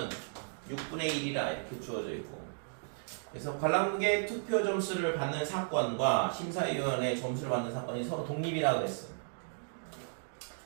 6분의 1이라 이렇게 주어져 있고 그래서 관람객 투표 점수를 받는 사건과 심사위원의 점수를 받는 사건이 서로 독립이라고 했어.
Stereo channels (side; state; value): left; silent; digital silence